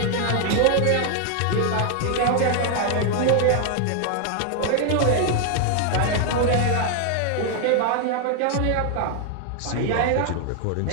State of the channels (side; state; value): both; different; correlation 0.00